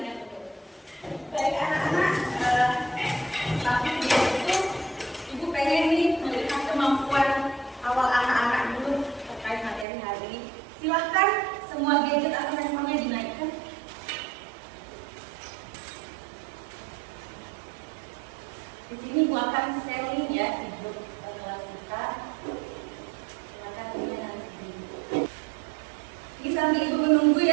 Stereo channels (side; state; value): left; drops out; at 9.9 s